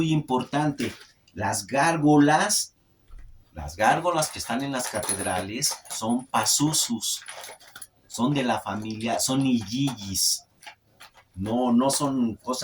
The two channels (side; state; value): both; identical; correlation 1.00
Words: importante. Las gárgolas que están en las catedrales son Pazuzus, son de la familia, son Igigis. No son